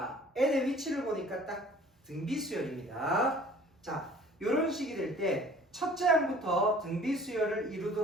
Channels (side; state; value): both; normal; correlation 0.50